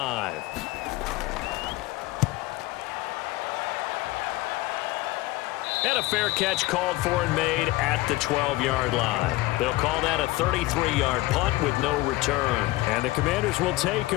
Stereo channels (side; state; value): right; quieter; 18.8 dB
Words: And a fair catch called for and made at the 12-yard line. They'll call that a 33-yard punt with no return. And the Commanders will take